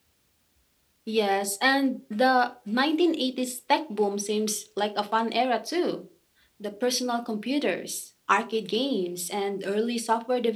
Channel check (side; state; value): both; identical; correlation 1.00